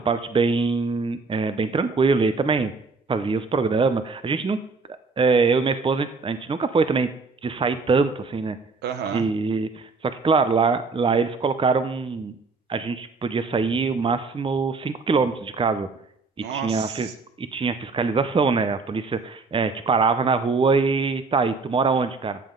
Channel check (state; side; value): quieter; left; 4.2 dB